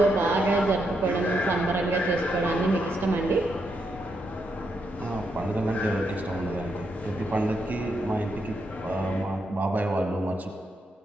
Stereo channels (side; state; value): both; normal; correlation 0.80